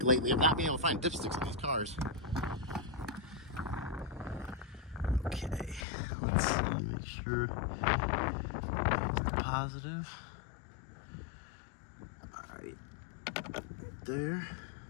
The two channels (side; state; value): right; drops out; at 5.9 s